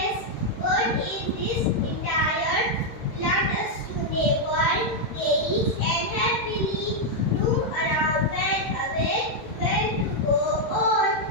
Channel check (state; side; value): late; right; 13 ms